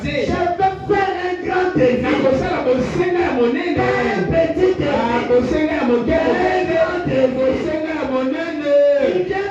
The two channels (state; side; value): identical; both; correlation 1.00